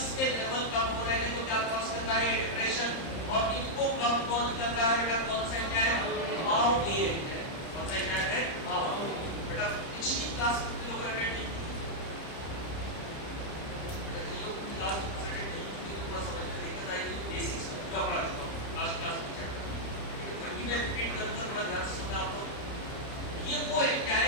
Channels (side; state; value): right; late; 30 ms